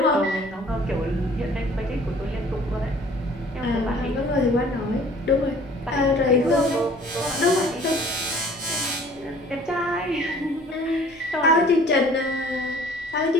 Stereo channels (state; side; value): normal; both; correlation 0.52